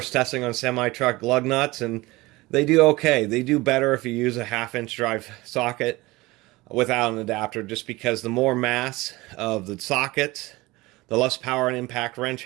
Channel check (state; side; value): quieter; left; 21.0 dB